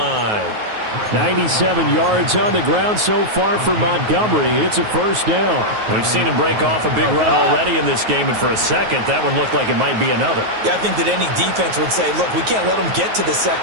97 yards on the ground so far for Montgomery. It's a 1st down. We've seen him break off a big run already in this game, and for a second, that one looked like it might be another. Yeah, I think that any defense would say, look, we can't let him get to the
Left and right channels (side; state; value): left; late; 9.4 ms